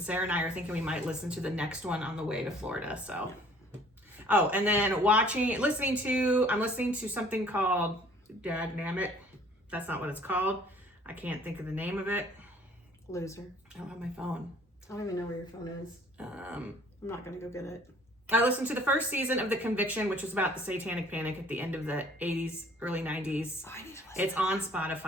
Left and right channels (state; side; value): normal; both; correlation 0.55